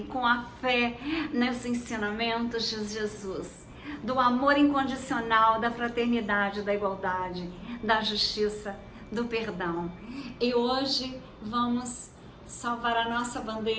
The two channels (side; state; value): both; identical; correlation 1.00